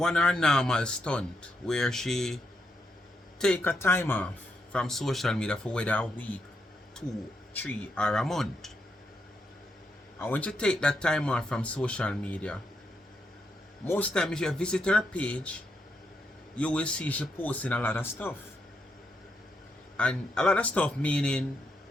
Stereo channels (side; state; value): both; normal; correlation 0.80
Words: her normal stunt where she take a time off from social media for whether a week, 2, 3, or a month. And when you take that time off from social media, most times if you visit her page, you will see she posting a lot of stuff. And a lot of stuff meaning